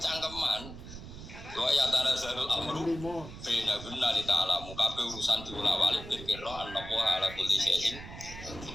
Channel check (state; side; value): noise; right; rumble, 12 dB below the sound